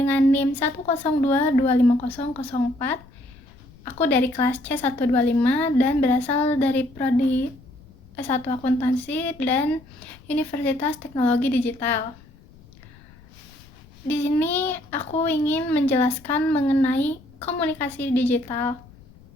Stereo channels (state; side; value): noise; left; rumble, 24 dB below the sound